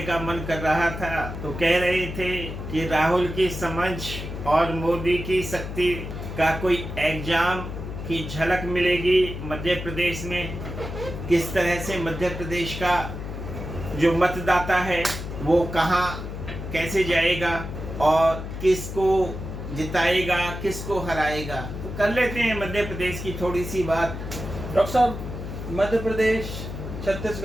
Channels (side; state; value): left; noise; hum, 8 dB below the sound